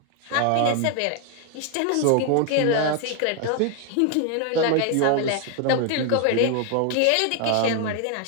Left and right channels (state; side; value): different; both; correlation 0.00